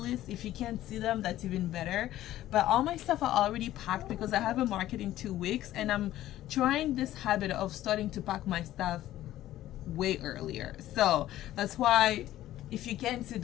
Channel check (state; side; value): quieter; right; 14.0 dB